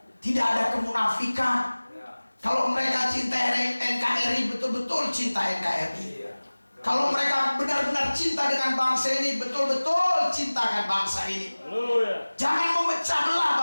Tidak ada kemunafikan. Kalau mereka cinta NKRI, betul-betul cinta NKRI. Kalau mereka benar-benar cinta dengan bangsa ini, betul-betul cintakan bangsa ini. Jangan memecah belah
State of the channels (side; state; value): both; inverted; correlation -1.00